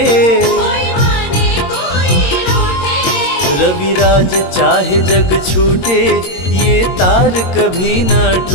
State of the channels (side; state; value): right; late; 22 ms